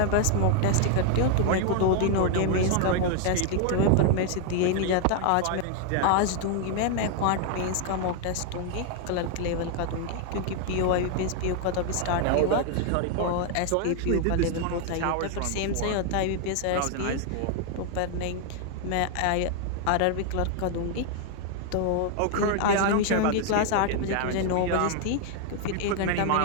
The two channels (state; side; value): different; both; correlation 0.00